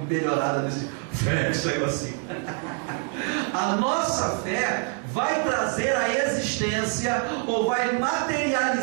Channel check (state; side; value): quieter; left; 38.9 dB